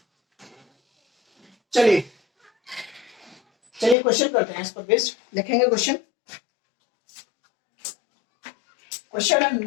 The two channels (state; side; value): drops out; right; at 4.0 s